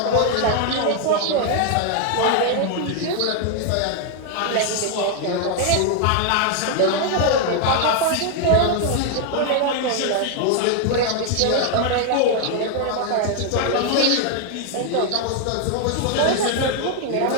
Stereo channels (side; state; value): both; different; correlation 0.00